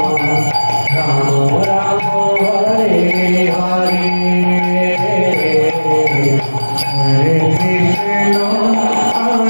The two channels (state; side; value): inverted; both; correlation -1.00